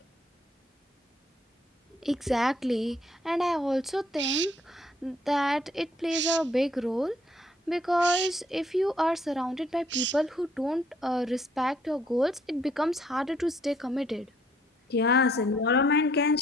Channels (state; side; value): normal; both; correlation 0.66